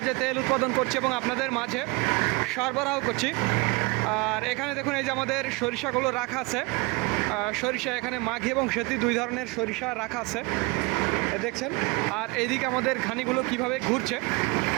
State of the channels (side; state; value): left; quieter; 26.5 dB